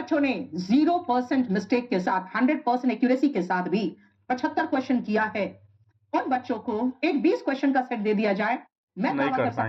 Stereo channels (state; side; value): identical; both; correlation 1.00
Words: ने 0% मिस्टेक के साथ 100% एक्यूरेसी के साथ भी 75 क्वेश्चन किया है, उन बच्चों को एक 20 क्वेश्चन का सेट दे दिया जाए, मैं दावा कर